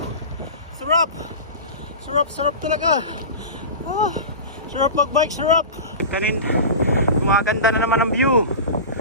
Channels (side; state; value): both; inverted; correlation -0.30